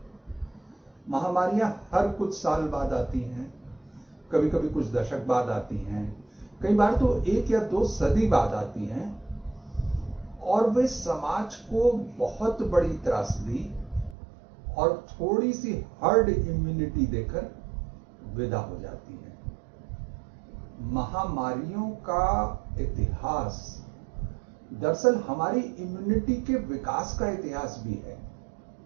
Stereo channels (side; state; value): left; drops out; at 14.2 s